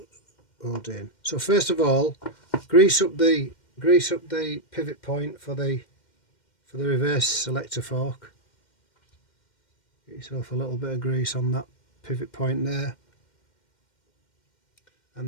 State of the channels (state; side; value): late; right; 2.1 ms